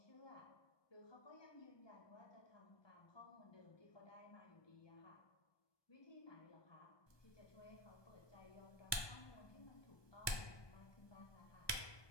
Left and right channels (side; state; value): right; late; 1.2 ms